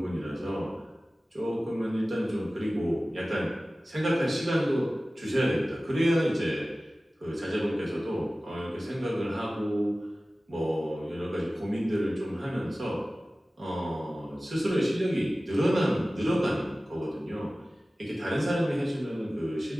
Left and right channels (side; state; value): both; normal; correlation 0.97